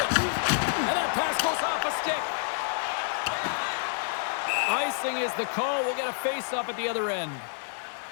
And that pass goes off a stick. Icing is the call. We'll get a face-off at the other end.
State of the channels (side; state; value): right; silent; digital silence